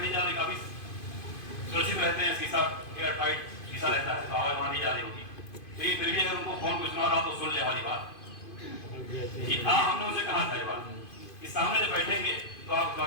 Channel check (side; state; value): right; late; 2.5 ms